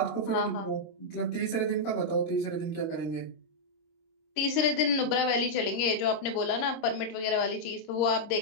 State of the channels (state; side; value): late; right; 26 ms